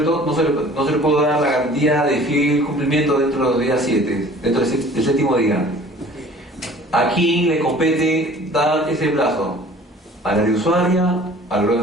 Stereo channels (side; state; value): both; normal; correlation 0.48